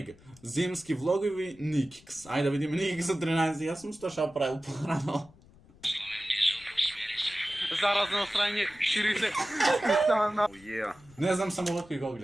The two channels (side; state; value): left; noise; rumble, 25 dB below the sound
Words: Зимски влогови Никикс. Ајде да видиме Никикс за 13. Јас сум што правил порано. Заразно страње, шири се. Не знам само кој го